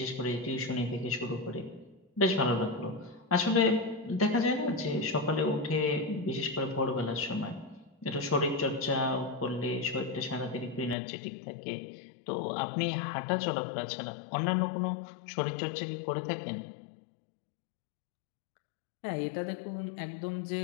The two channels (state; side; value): drops out; right; at 11.0 s